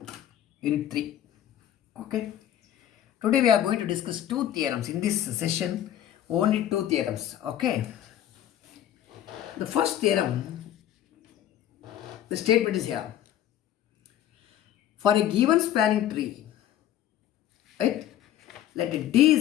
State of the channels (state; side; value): quieter; right; 11.6 dB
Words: unit 3. Okay. Today we are going to discuss two theorems. In this session, only two theorems. Okay. The first theorem, the statement is here. For a given spanning tree, right, let D